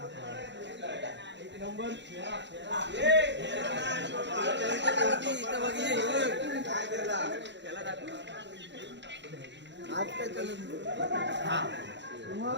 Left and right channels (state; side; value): late; left; 0.52 ms